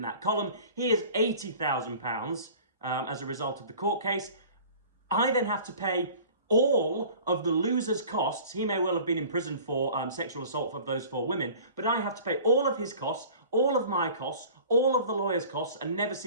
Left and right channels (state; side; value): inverted; both; correlation -0.45